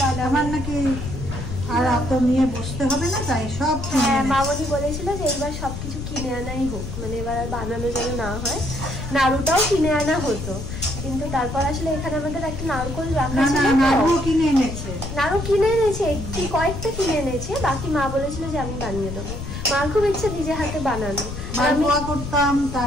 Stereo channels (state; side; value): noise; left; rumble, 7 dB below the sound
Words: আমার নাকি আর এত নিয়ে বসতে হবে না, তাই সব মামনি বলেছিল যে এবার সবকিছু কিনে আনাই হোক, মানে এবার আর বানানো যেন না হয়। নাড়ুটাও কিনে আনা হতো, কিন্তু তারপর আসলে এখানে আমাদের একটা নারকোল রাখা ছিল। নাড়ু কিনে এনেছে, নাড়ু কিনে এনেছে, কয়েকটা কিনে এনেছে, বাকি মা বলেছিল যে আমি বানিয়ে দেবো। মার খুব ইচ্ছে নিজে হাতে বানানো। মালপোয়া করতাম,